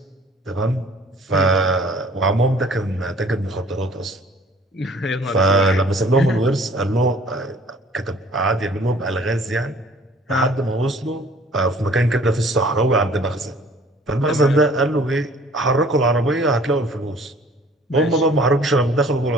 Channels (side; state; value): both; normal; correlation 0.54